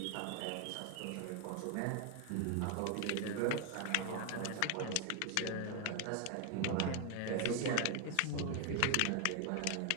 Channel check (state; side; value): different; both; correlation 0.01